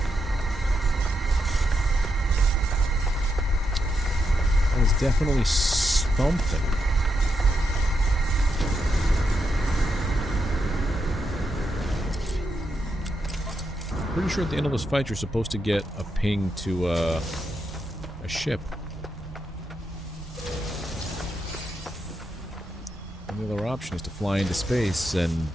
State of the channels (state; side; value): normal; both; correlation 0.83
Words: Definitely something. Pretty sure at the end of this fight you're supposed to get a ping to a ship. And the other option is to fly into space and